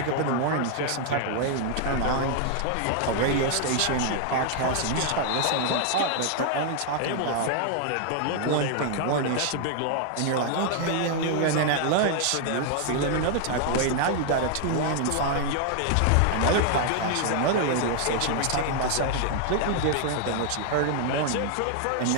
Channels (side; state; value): both; different; correlation 0.00